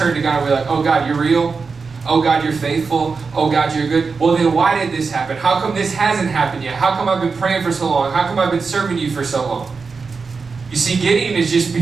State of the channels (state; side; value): quieter; left; 4.8 dB